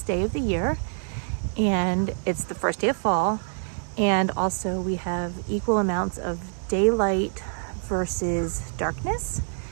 day of the year, and it's the first day of fall, and also we have equal amounts of daylight versus darkness.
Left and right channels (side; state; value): left; silent; digital silence